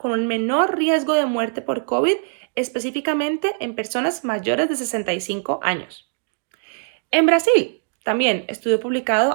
un menor riesgo de muerte por COVID, específicamente en personas mayores de 65 años. En Brasil, también estudio publicado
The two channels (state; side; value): silent; left; 65 dB below the other